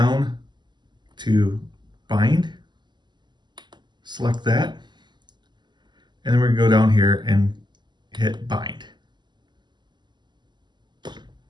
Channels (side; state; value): left; late; 0.21 ms